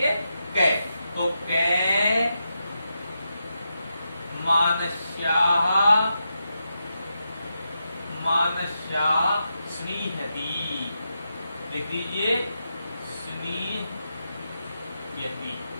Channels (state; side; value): inverted; both; correlation -0.86